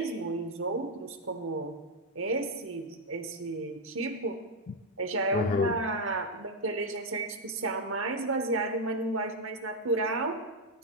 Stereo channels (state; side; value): normal; both; correlation 0.01